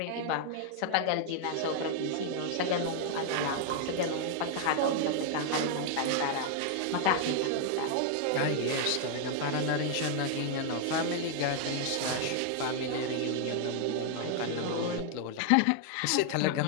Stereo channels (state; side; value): different; both; correlation 0.00